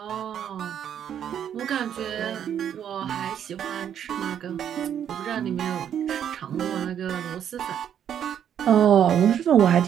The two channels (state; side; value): quieter; left; 9.3 dB